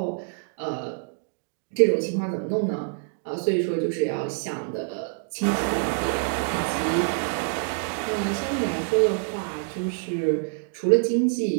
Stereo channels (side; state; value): left; silent; 60 dB below the other